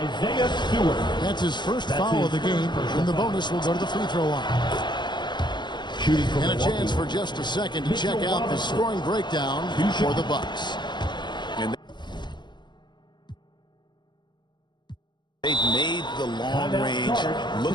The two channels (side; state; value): right; late; 0.22 ms